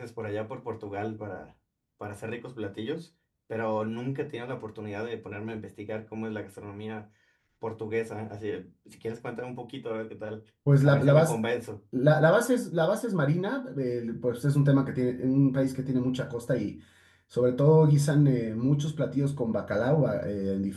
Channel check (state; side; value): identical; both; correlation 1.00